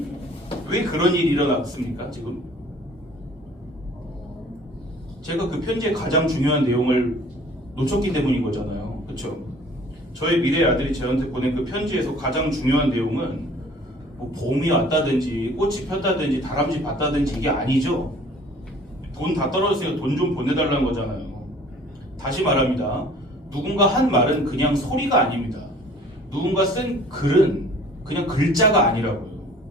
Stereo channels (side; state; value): both; normal; correlation 0.51